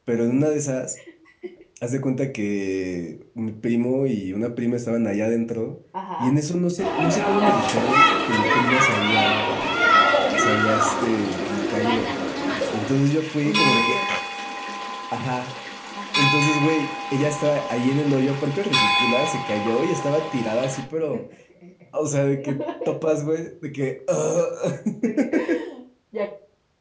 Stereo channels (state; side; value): identical; both; correlation 1.00